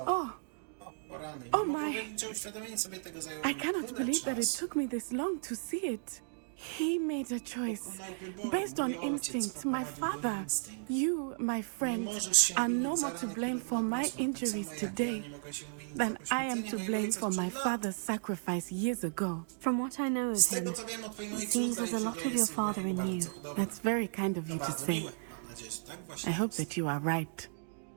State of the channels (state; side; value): silent; left; digital silence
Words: Oh my. I cannot believe that it took me this long to see it. He made a choice based on instinct. My father, you, my friend, are no more to blame for my injuries today than I am to blame for my father's sacrifice years ago. From what I know of him, it seems there's a lot of your father in you. That's very kind of you to say. I hope that you are right.